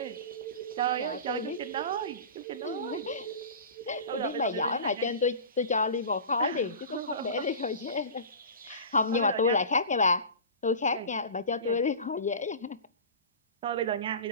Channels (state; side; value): inverted; both; correlation -0.34